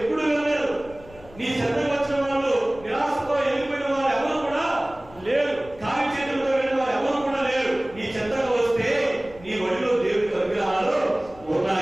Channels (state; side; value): noise; left; rumble, 21 dB below the sound